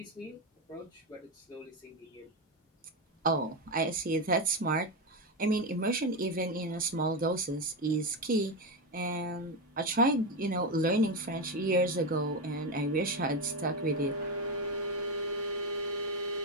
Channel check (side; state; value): both; normal; correlation 0.12